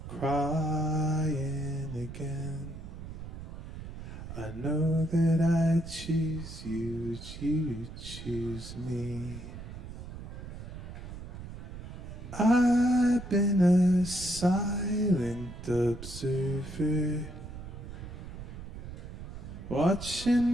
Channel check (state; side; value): noise; right; rumble, 11 dB below the sound